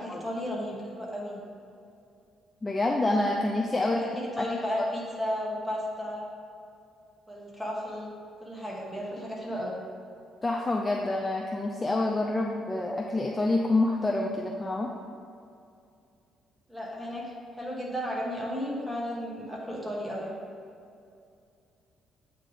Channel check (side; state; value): both; normal; correlation 0.86